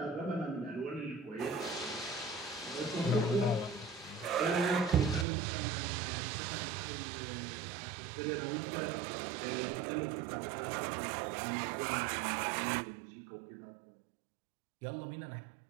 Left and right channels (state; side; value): drops out; left; at 5.2 s